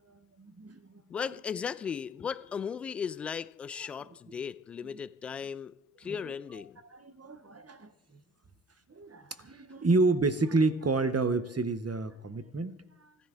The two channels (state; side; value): normal; both; correlation 0.52